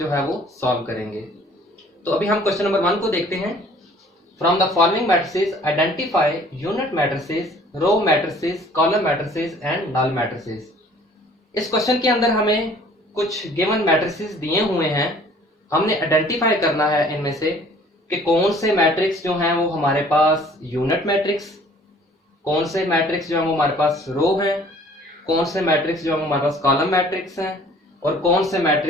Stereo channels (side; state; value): both; normal; correlation 0.54